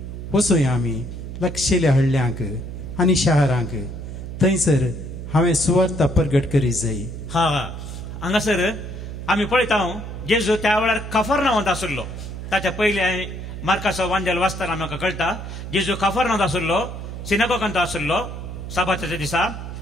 वचूया आमी लागशिल्ल्या हळ्ळ्यांक आनी शारांक, थंयसर हांवें सुवार्ता प्रगट करीत जाय. हांगासर आमी पळयता जेजू त्या वेळार कफरनावांत आसलो. ताच्या पयले मार्काचो वांजल वाचतना म्हाका कळटा जेजू कफरनावांत आसलो, सिनागोगांत आसलो साबाताच्या दिसा.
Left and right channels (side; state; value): right; noise; hum, 8 dB below the sound